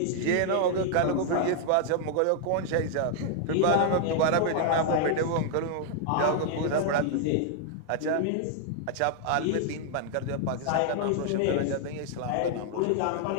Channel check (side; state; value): both; different; correlation 0.00